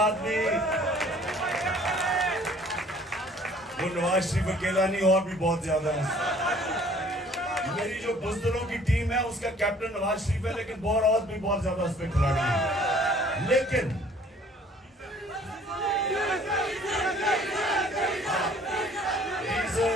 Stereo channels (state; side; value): normal; both; correlation 0.55